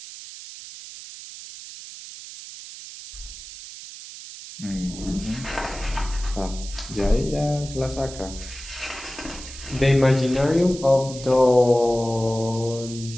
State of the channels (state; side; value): noise; right; hiss, 13 dB below the sound